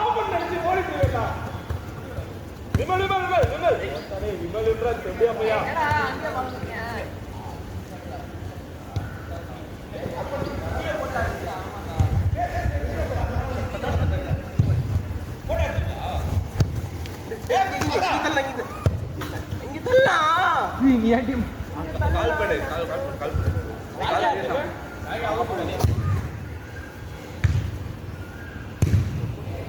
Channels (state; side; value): identical; both; correlation 1.00